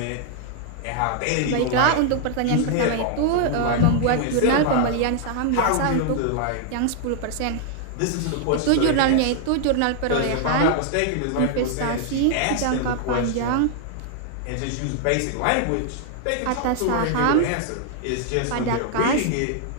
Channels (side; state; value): both; different; correlation 0.00